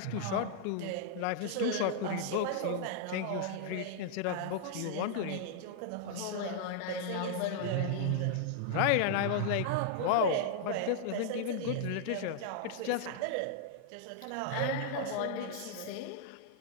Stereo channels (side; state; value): both; different; correlation -0.01